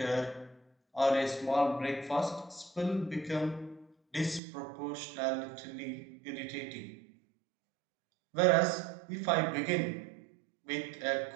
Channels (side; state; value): left; drops out; at 4.4 s